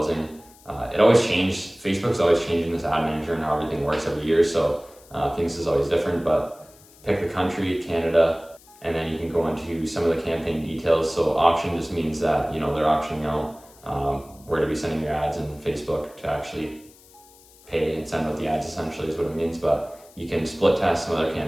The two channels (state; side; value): noise; left; hiss, 25 dB below the sound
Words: It always changes. Facebook's always changing this ad manager and how everything works every year, so things is always different, but pick the country, Canada, and then you can go into some of the campaign details. So auction just means that, they're auctioning out where to be sending your ads, and Facebook to actually pay and send out the ads, essentially is what it means. But you can split test some other